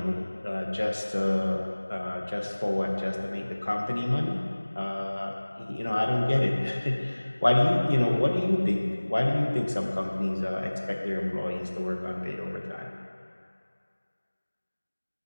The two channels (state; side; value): inverted; both; correlation -1.00